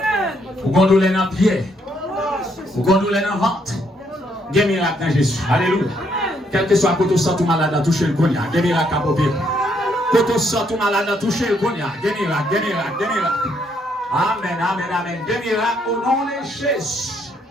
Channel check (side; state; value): both; normal; correlation 0.72